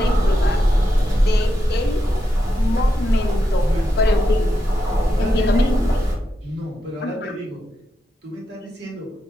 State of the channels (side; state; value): both; normal; correlation 0.86